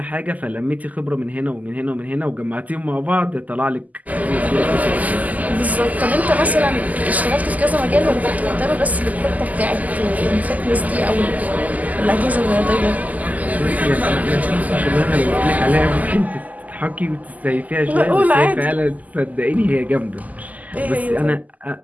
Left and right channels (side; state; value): left; late; 0.078 ms